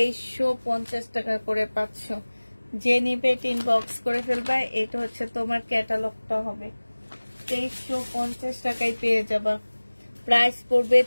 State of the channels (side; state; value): both; inverted; correlation -1.00